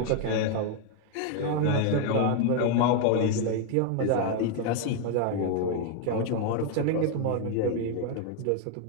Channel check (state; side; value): different; both; correlation 0.01